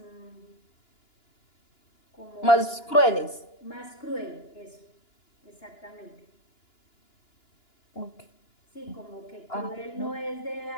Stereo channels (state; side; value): late; right; 2.9 ms